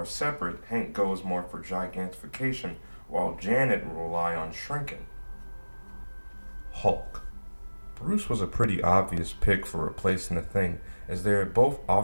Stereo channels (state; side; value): inverted; both; correlation -1.00